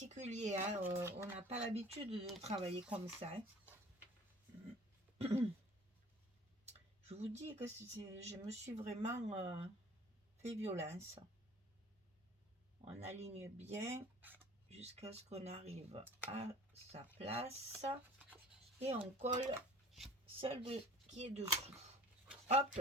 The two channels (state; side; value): normal; both; correlation 0.47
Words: hein, on n'a pas l'habitude de travailler comme ça. Hein. Je vous dis que je me suis vraiment fait violence. On aligne bien jusqu'à ce qu'on arrive à sa place et on colle celle qui est dessous. Hop